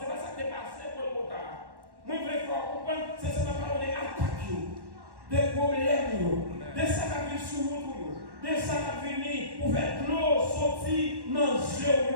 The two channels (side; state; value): left; late; 1.1 ms